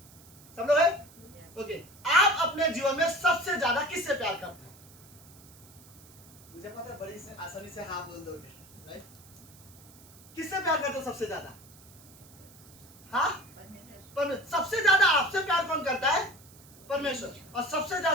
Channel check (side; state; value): right; noise; hiss, 23 dB below the sound